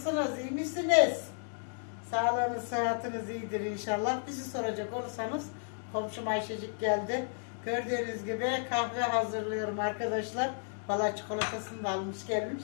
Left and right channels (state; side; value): silent; right; digital silence